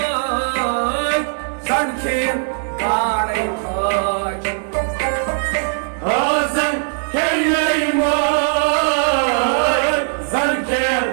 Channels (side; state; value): left; silent; 67 dB below the other